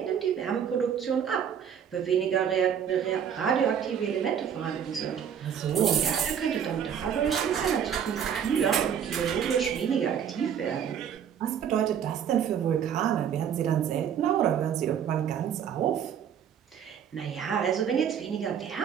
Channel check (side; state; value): left; quieter; 8.4 dB